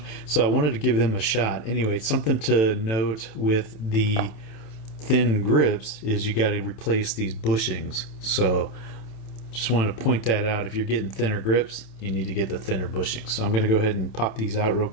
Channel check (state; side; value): late; right; 27 ms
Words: so I wanted to give them a shot. Anyway, something to note with the thin grips is you got to replace these bushings. So just wanted to point that out. If you're getting thinner grips, you need to get the thinner bushings. So I'm going to go ahead and pop these out real